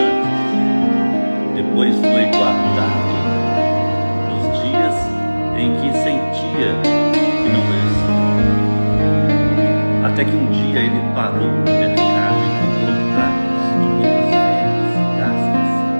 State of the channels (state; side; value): inverted; both; correlation -1.00